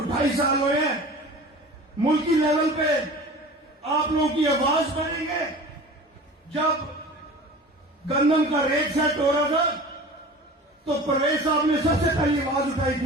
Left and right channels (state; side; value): normal; both; correlation 0.39